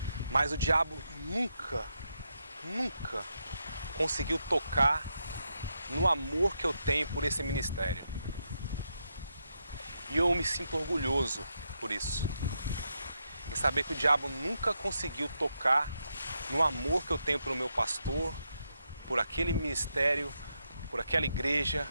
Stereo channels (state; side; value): inverted; both; correlation -0.82